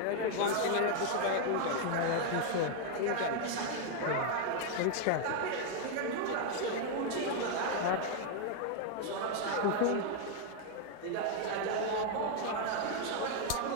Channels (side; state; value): both; different; correlation 0.00